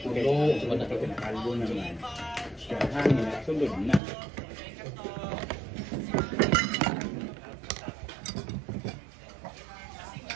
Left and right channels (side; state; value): left; drops out; at 4.0 s